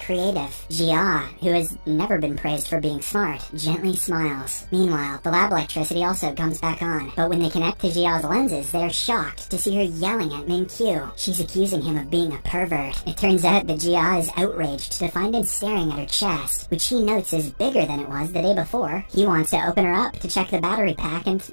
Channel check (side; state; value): both; inverted; correlation -1.00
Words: Jia, who has never been praised for being smart, gently smiles. Meanwhile, the lab electricity also comes back on, but when they connect to Jia's lenses, they're shocked to see her yelling at Min-kyu. She's accusing him of being a pervert. It turns out that Jia is outraged to find him staring at her chest, which he notes is bigger than it was the day before. He wants to open her up to check the battery pack and